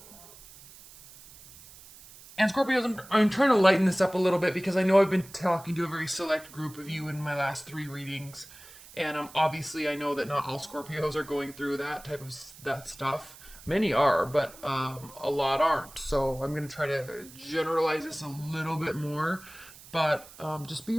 And Scorpios, I'm trying to lighten this up a little bit because I know I've been talking to a very select group of you in my last 3 readings. And obviously I know that not all Scorpios are going through that stuff. Many are, but a lot aren't. So I'm going to try to generalize this a little bit more. But just be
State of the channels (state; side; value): noise; right; hiss, 20 dB below the sound